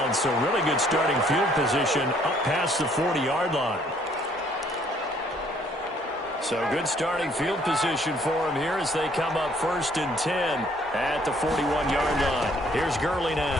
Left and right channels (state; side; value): normal; both; correlation 0.63